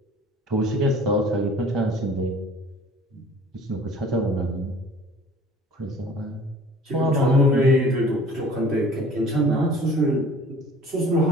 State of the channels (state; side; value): normal; both; correlation 0.48